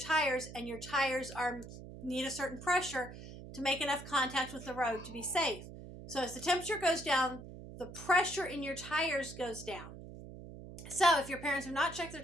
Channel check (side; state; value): right; noise; hum, 13 dB below the sound